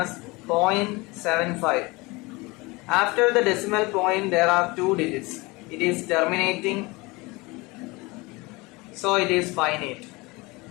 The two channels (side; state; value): right; quieter; 24.1 dB